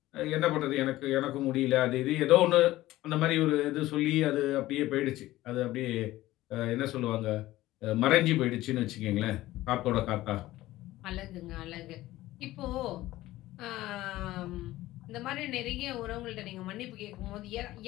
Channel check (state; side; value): quieter; right; 16.4 dB